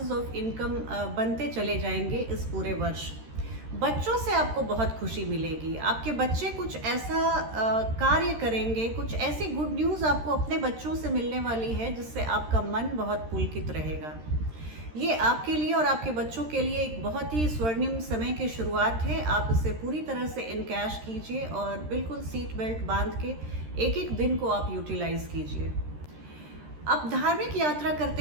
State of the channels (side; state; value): left; late; 13 ms